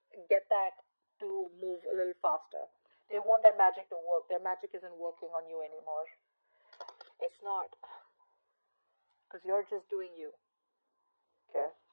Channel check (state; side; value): inverted; both; correlation -1.00